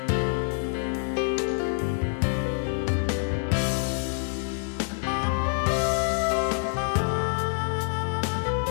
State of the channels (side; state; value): right; silent; digital silence